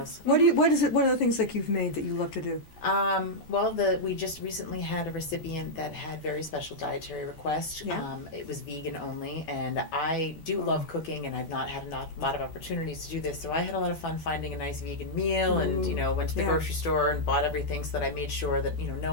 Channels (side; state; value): right; late; 13 ms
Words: What is it? What are the things that you've made that you love to do? Well, we just recently had a recipient that had very special dietary requests. Yeah. It was vegan only, and I do love cooking, and I've not had a lot of opportunities to do this. So I had a lot of fun finding a nice vegan meal, and went to the grocery store and bought everything so that I made sure that